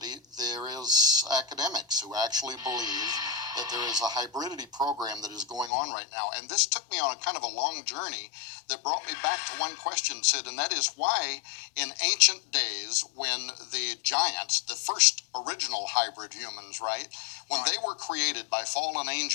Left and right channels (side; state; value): right; drops out; at 5.7 s